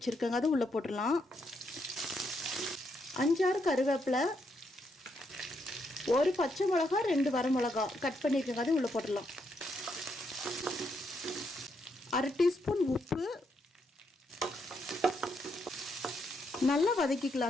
அது உள்ளே போட்டுடலாம். 5-6 கருவேப்பிலை, ஒரு பச்சை மிளகா, 2 வரமிளகா கட் பண்ணியிருக்கோங்க, அது உள்ளே போட்டுடலாம். 1/2 டீஸ்பூன் உப்பு நல்லா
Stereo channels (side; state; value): both; normal; correlation 0.78